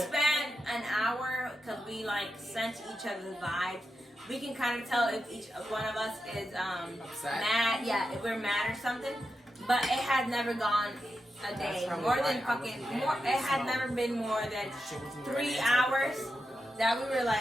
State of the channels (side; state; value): both; normal; correlation 0.88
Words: an hour because we like sense each other's vibes. We can kind of tell if each one of us is Upset. mad. Yeah, if we're mad or something. But it has never gone a day. probably More why than I fucking wasn't more. mad. It had never been more than 3 hours that we were